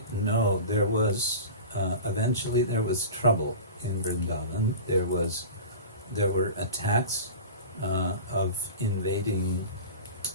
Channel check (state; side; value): inverted; both; correlation -0.33